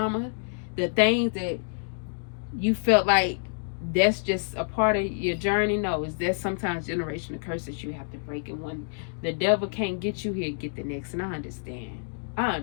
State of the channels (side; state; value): right; silent; digital silence